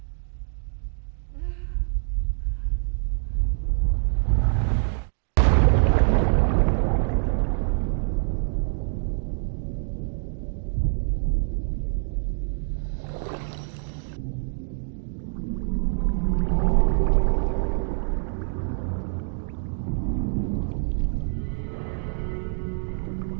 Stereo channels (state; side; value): silent; left; 61 dB below the other